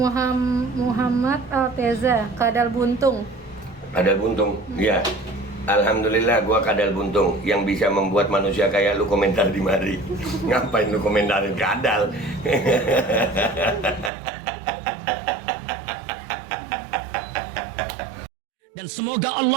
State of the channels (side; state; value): left; drops out; at 14.1 s